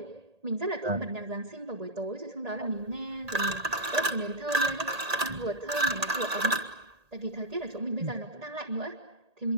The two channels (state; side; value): late; left; 1.8 ms